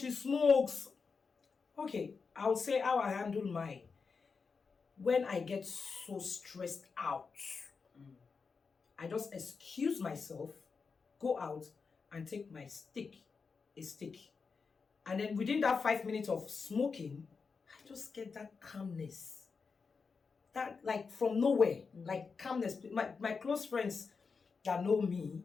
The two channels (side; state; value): right; quieter; 5.1 dB